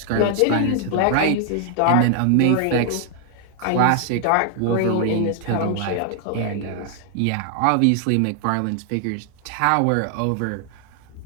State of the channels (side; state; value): both; different; correlation 0.00